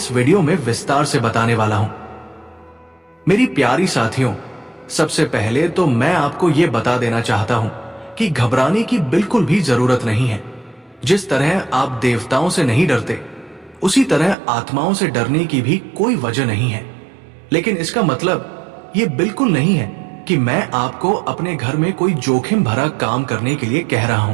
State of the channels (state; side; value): drops out; left; at 14.4 s